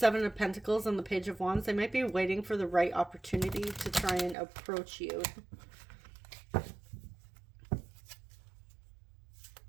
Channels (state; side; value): drops out; left; at 4.4 s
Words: of Pentacles and the Page of Wands, they might be waiting for the right opportunity to try and approach you.